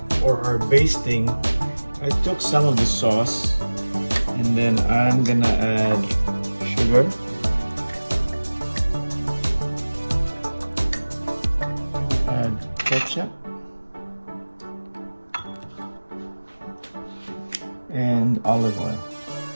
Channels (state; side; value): inverted; both; correlation -1.00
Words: For our basting, I took some of the sauce and then I'm gonna add sugar, ketchup, and olive oil.